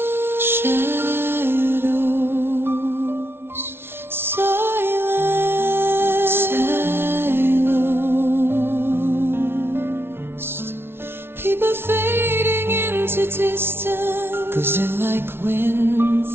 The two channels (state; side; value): late; left; 0.12 ms